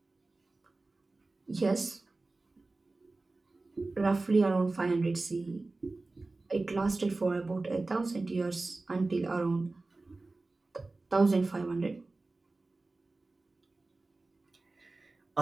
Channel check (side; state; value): left; quieter; 3.3 dB